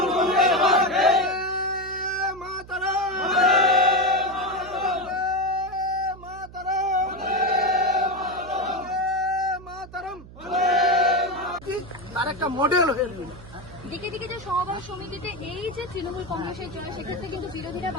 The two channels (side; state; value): right; noise; hum, 18 dB below the sound